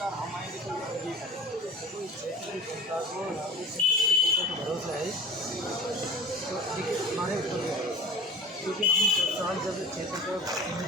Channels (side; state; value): both; normal; correlation 0.39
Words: हम आएंगे तो भरोसा है। तो देखिए हमारे ऊपर क्योंकि हम साल जब क्षेत्र को